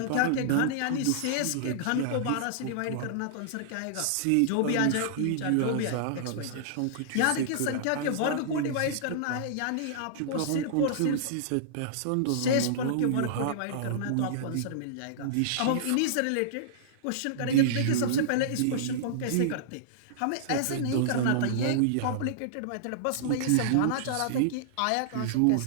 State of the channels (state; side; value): different; both; correlation -0.02